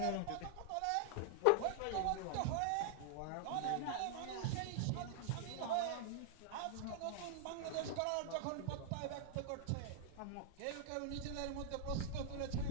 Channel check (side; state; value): both; different; correlation 0.00